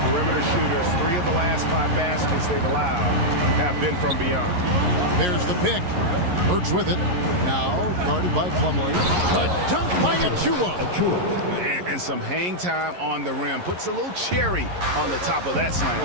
perimeter shooters. 3 of the last 5 baskets they've allowed have been from beyond. There's the pick. Burks with it. Now guarded by Plumlee. A dunk by Achua. And some hang time on the rim. Puts a little cherry on the top of that slam.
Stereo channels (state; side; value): late; left; 11 ms